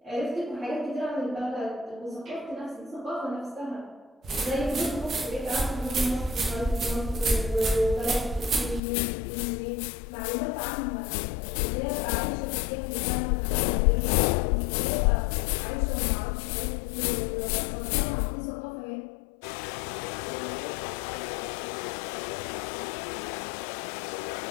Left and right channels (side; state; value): right; drops out; at 8.8 s